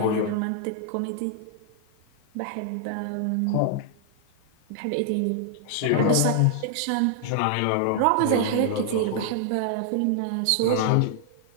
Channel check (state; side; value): different; both; correlation 0.00